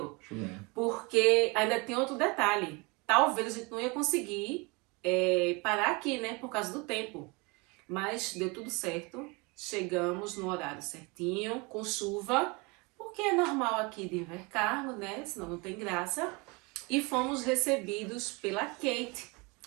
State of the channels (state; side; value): quieter; left; 27.9 dB